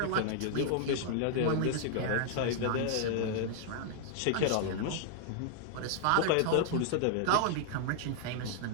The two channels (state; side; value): different; both; correlation -0.01